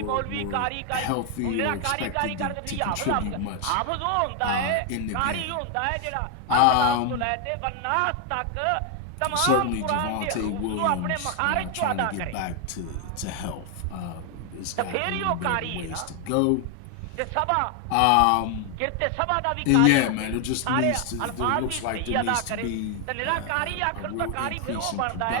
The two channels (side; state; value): both; different; correlation 0.00